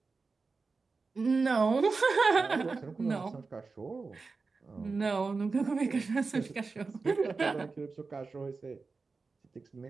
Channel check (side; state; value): left; quieter; 4.2 dB